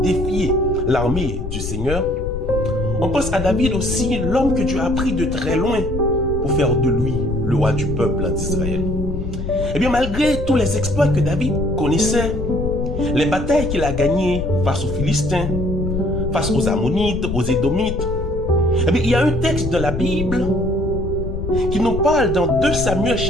l'armée du Seigneur. On pense à David aussi, l'homme que Dieu a pris de très loin pour faire de lui le roi du peuple d'Israël. Eh bien, malgré tous les exploits que David connaissait, les batailles qu'il a gagnées face aux Philistins, face aux Ammonites, aux Édomites, eh bien, il y a un texte de la Bible qui nous parle dans 2 Samuel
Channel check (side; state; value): left; noise; rumble, 5 dB below the sound